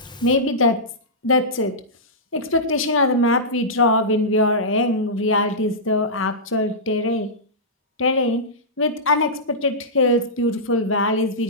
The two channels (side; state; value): both; normal; correlation -0.15